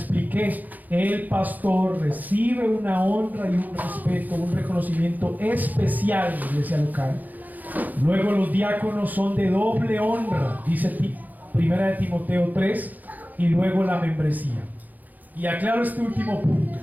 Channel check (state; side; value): late; left; 0.082 ms